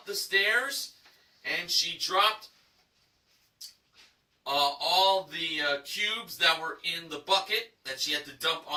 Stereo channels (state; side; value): identical; both; correlation 1.00